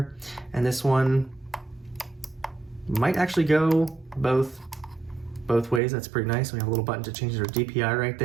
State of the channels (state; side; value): drops out; left; at 5.8 s